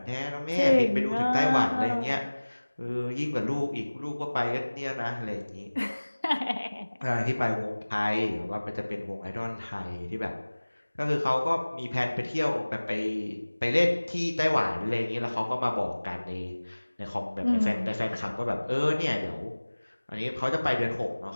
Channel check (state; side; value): inverted; both; correlation -1.00